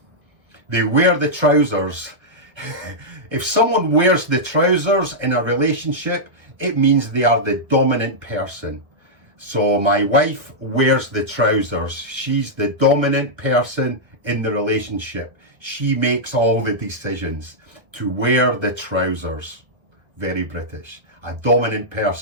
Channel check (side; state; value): left; late; 1.3 ms